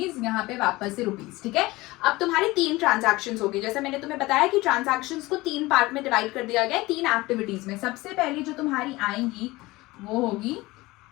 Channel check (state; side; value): quieter; right; 20.4 dB